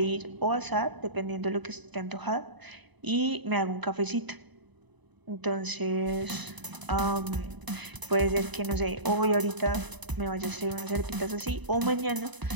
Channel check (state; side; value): late; left; 1.0 ms